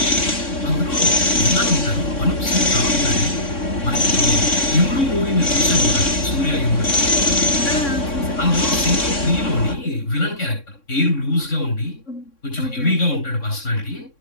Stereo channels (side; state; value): right; late; 3.6 ms